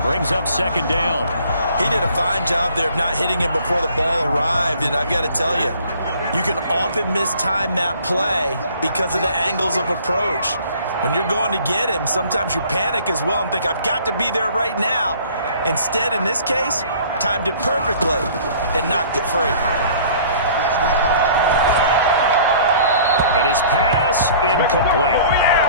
Brings up second down. He did a fine job there of not hitting him before the ball arrived, and I've got to tell you, you can often mistime that play because of the angles of approach. When you're going to get him, sometimes you panic as well and think, I've got to be there right now. Instead, in this case, timed it perfectly and knocked it free. And his pass, incomplete.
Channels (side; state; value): both; inverted; correlation -0.52